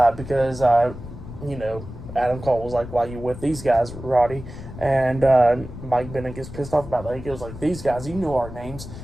because you know, Adam Cole was like, why you with these guys, Roddy? And Mike Bennett gets pissed off about that. He goes like, "These guys, you know our names."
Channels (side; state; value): left; noise; rumble, 12 dB below the sound